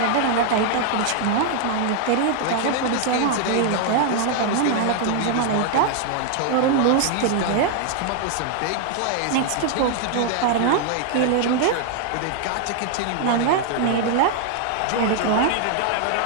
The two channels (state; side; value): different; both; correlation 0.00